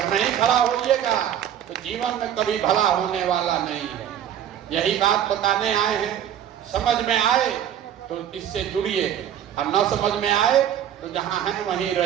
नहीं खड़ा होइएगा तो जीवन में कभी भला होने वाला नहीं है। यही बात बताने आए हैं। समझ में आए तो इससे जुड़िए, और न समझ में आए तो जहां हैं वहीं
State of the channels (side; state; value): left; quieter; 10.1 dB